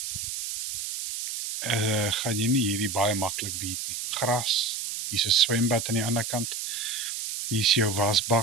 gaan jy nie hierdie baie maklik beat nie. Gras, hier is 'n swembad aan die ander kant. Hier is jou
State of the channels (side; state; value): right; noise; hiss, 5 dB below the sound